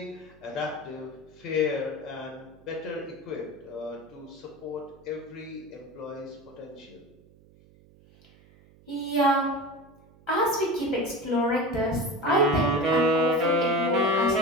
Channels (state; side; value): noise; right; hum, 27 dB below the sound